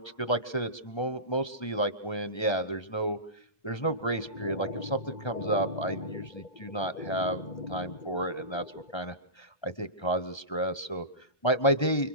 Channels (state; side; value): late; right; 1.3 ms